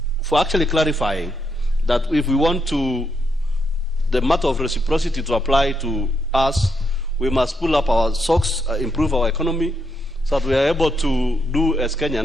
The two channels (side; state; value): both; normal; correlation 0.79